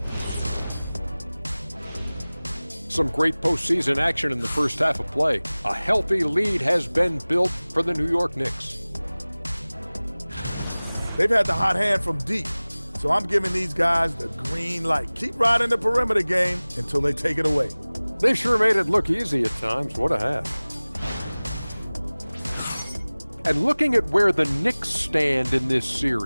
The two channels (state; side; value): inverted; both; correlation -0.99